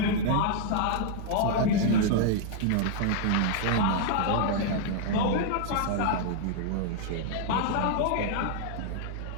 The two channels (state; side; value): different; both; correlation -0.01